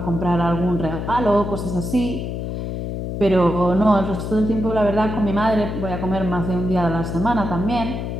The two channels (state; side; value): noise; left; hum, 4 dB below the sound